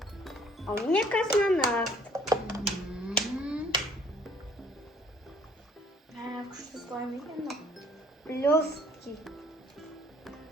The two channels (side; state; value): both; normal; correlation 0.59